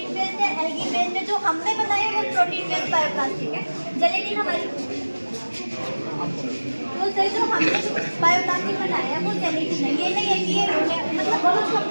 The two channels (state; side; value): inverted; both; correlation -1.00